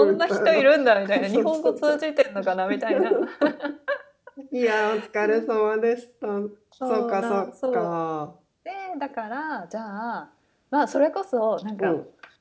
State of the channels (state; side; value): identical; both; correlation 1.00